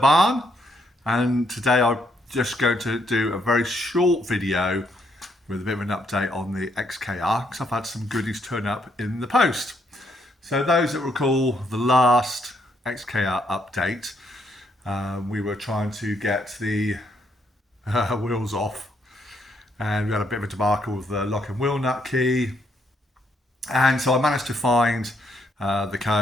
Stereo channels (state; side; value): normal; both; correlation 0.73